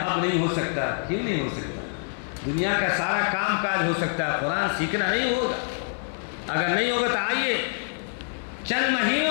نہیں ہو سکتا. کیوں نہیں ہو سکتا؟ دنیا کا سارا کام کاج ہو سکتا ہے, قرآن سیکھنا نہیں ہوگا. اگر نہیں ہوگا تو آئیے چند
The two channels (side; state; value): right; silent; 56 dB below the other